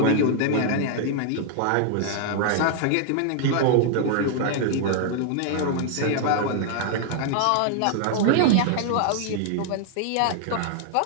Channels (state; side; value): different; both; correlation 0.00